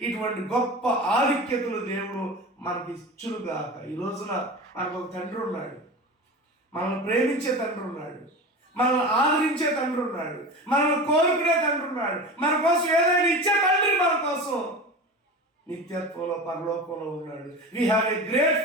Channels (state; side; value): normal; both; correlation 0.30